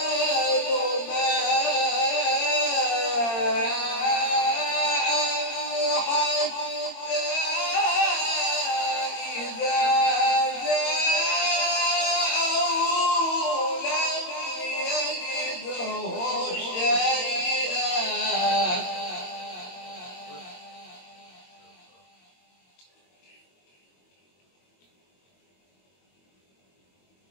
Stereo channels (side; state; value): right; late; 22 ms